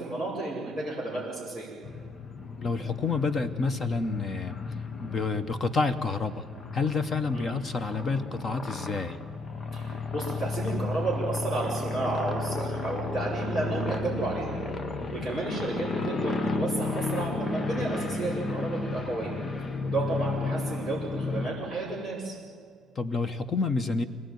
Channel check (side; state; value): both; normal; correlation 0.71